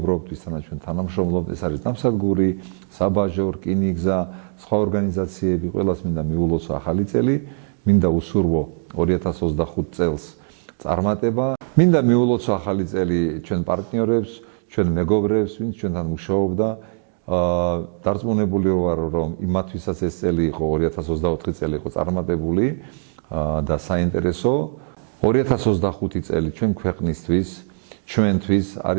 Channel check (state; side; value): silent; left; digital silence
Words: ვისთანაც ჩვენ თანამშრომლობთ, ეს არის ნავსადგური, საბაჟო, რკინიგზა, სხვა ორგანიზაციები, ყველას მინდა მიულოცო ახალი წელი, მინდა უსურვო 2025 წელს წარმატება, მინდა მიულოცო ახალი წელი ჩვენ პარტნიორებს, ჩვენ მეგობრებს, ვინც ჩვენთან მუშაობდა, დარწმუნებული ვარ, რომ იმათვისაც ეს წელი იყო 2024 წელი იყო წარმატებული და საინტერესო. 2025 წელი ჩვენ ქვეყნისთვის, ჩვენთვის